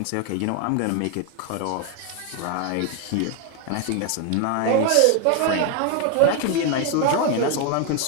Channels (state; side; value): different; both; correlation 0.01